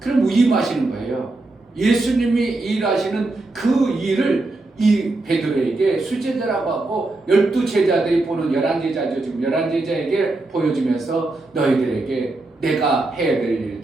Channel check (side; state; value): left; quieter; 3.1 dB